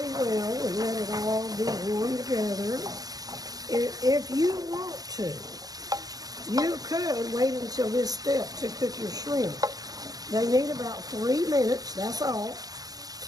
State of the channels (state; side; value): late; left; 0.18 ms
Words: well and let it all be warm together. If you want to, you could wait until this step to cook your shrimp. They need about 3 minutes, that's all,